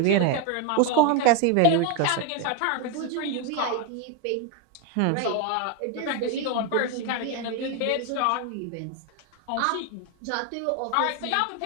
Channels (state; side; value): different; both; correlation 0.02